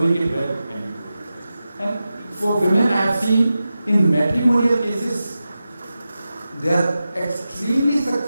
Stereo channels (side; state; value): both; inverted; correlation -0.93